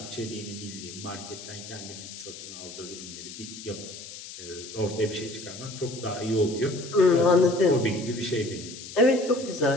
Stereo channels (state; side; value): noise; left; hiss, 13 dB below the sound